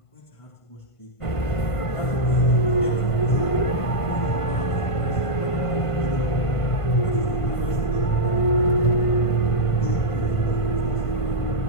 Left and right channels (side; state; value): right; late; 1.5 ms